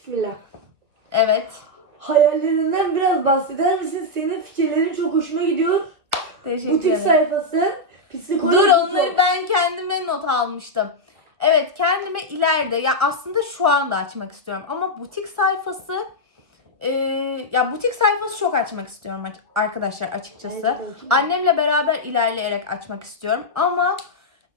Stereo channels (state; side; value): late; left; 1.6 ms